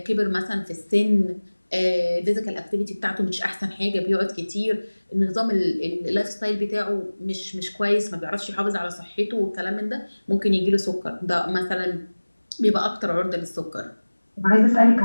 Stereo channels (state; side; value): inverted; both; correlation -1.00